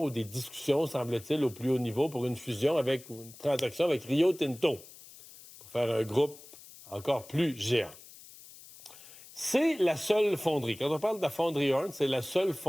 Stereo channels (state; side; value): noise; left; hiss, 19 dB below the sound